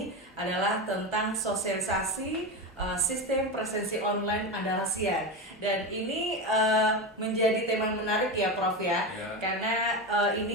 adalah tentang sosialisasi sistem presensi online Andalasian. Dan ini menjadi tema yang menarik ya Prof ya. Karena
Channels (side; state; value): both; normal; correlation 0.19